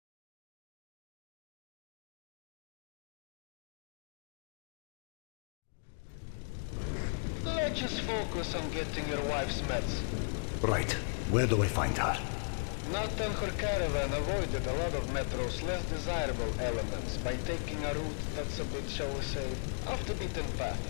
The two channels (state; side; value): silent; right; digital silence